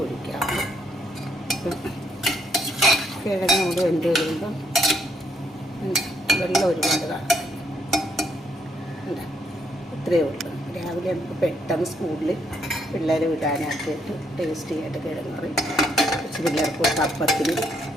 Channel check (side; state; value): both; normal; correlation 0.73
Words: ഒഴിക്കാവൂ. കിഴങ്ങ് കൂടെ വെന്ത് കഴിയുമ്പം വെള്ളം ഒരുപാട് കാണും. ഇത്രയേ ഉള്ളൂ. രാവിലെ നമുക്ക് പെട്ടെന്ന് സ്കൂളിൽ പിള്ളേർ വിടാനാക്കിയിട്ട് ടേസ്റ്റി ആയിട്ട് കിഴങ്ങ് കറി കുറച്ച് പിള്ളേർക്ക് അപ്പത്തിനും